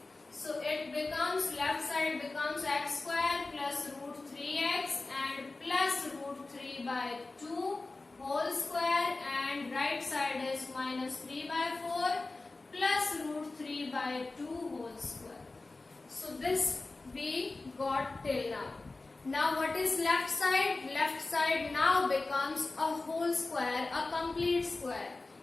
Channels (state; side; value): quieter; right; 3.4 dB